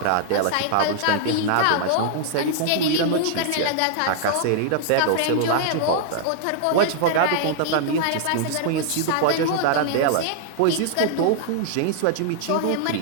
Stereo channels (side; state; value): both; different; correlation -0.01